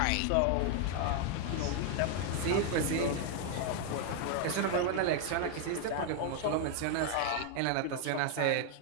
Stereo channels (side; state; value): both; different; correlation 0.00